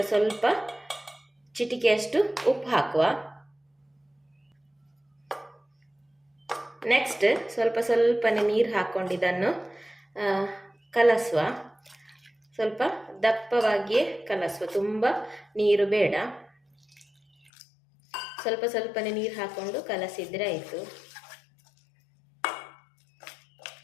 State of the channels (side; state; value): right; drops out; at 17.5 s